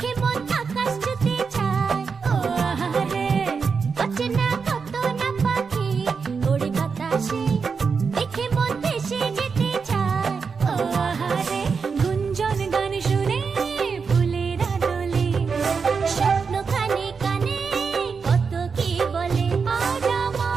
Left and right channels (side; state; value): left; quieter; 5.4 dB